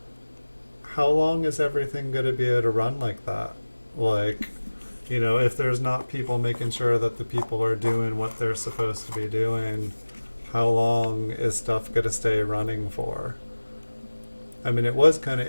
how long is everything going to be able to run like that? Like, if there's not people making sure that the people are doing what they're supposed to be doing, how long is stuff going to stay running for? I mean, it was kind of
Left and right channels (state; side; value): inverted; both; correlation -1.00